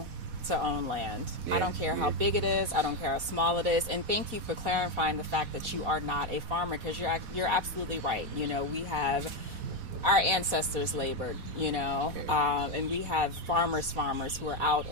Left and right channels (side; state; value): left; late; 4.1 ms